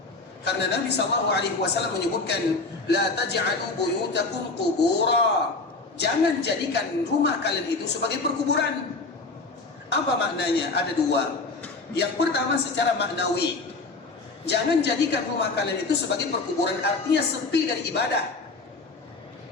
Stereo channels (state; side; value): quieter; right; 3.7 dB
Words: Karena Nabi SAW menyebutkan, la taj'alu buyutakum qubura. Jangan jadikan rumah kalian itu sebagai perkuburan. Apa maknanya? Ada dua. Yang pertama secara maknawi, jangan jadikan rumah kalian itu sebagai perkuburan, artinya sepi dari ibadah.